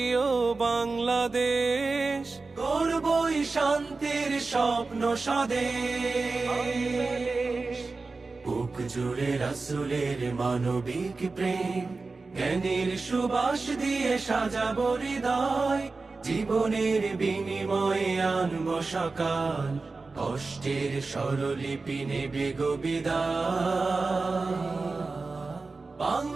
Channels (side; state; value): left; quieter; 3.8 dB